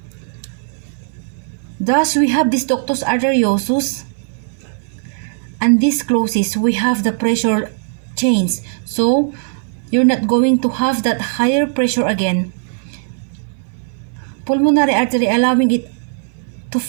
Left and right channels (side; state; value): left; silent; 61 dB below the other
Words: Thus we have this ductus arteriosus, and this closes. We have the pressure change, so you're not going to have that higher pressure again. Pulmonary artery allowing it to